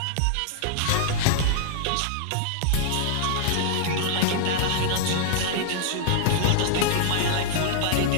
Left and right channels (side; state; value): both; different; correlation -0.01